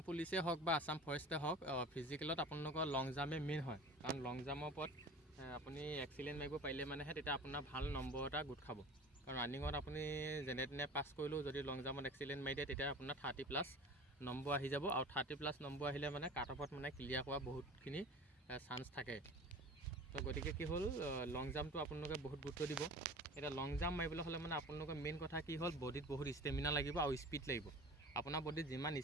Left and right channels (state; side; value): normal; both; correlation 0.39